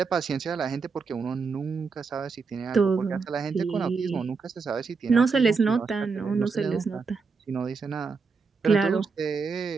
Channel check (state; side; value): quieter; left; 4.9 dB